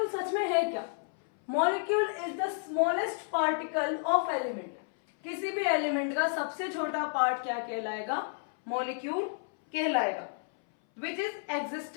सच में है क्या। Molecule is the smallest particle of element. किसी भी एलिमेंट का सबसे छोटा पार्ट क्या कहलाएगा? मॉलिक्यूल कहलाएगा। विच इज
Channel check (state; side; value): silent; right; 57 dB below the other